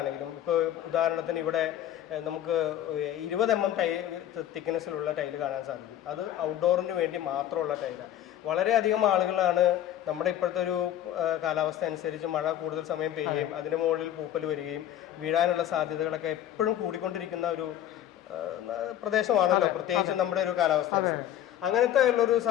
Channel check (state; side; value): quieter; right; 11.6 dB